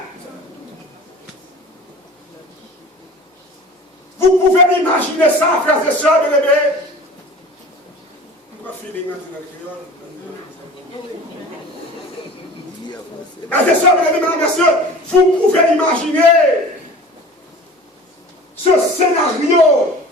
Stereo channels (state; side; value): normal; both; correlation 0.41